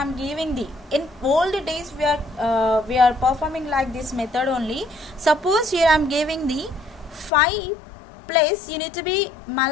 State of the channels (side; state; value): right; drops out; at 7.3 s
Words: am giving the, in old days we are performing like this method only. Suppose here I am giving the 5 plus, you need to be